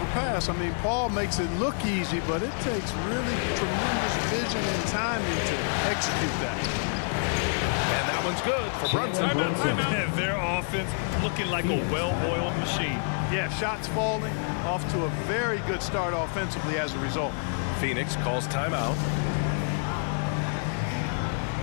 pass. I mean, Paul makes it look easy, but it takes really tremendous vision and timing to execute that. And that one's good for Brunson. And their offense looking like a well-oiled machine. Yeah, shots falling, off to a very good start offensively as a result. Phoenix calls timeout.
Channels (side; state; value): right; silent; 60 dB below the other